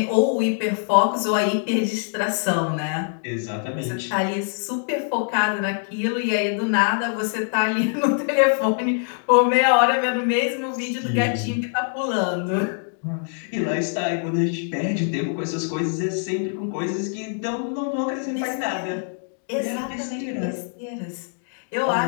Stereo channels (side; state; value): right; silent; 63 dB below the other